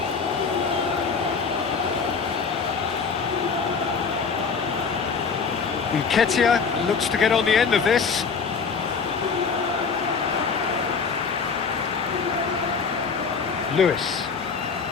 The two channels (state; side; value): quieter; right; 5.4 dB